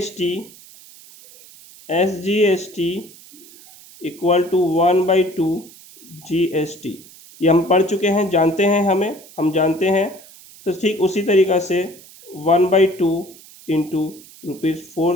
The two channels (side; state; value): right; noise; hiss, 21 dB below the sound